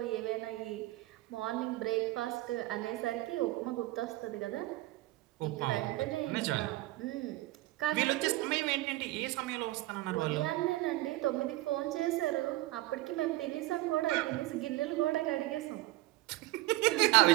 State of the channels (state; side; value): quieter; left; 18.7 dB